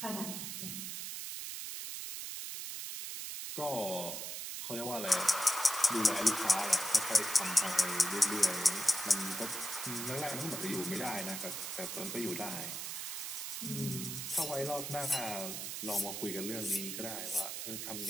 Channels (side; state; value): right; noise; hiss, 5 dB below the sound